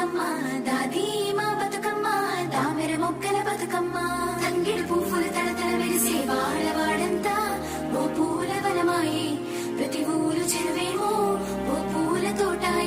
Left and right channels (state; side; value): identical; both; correlation 1.00